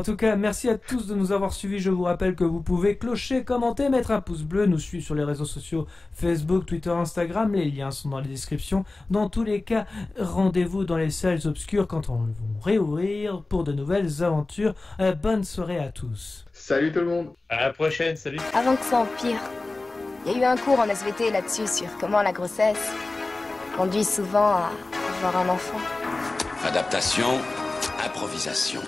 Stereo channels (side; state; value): right; quieter; 3.2 dB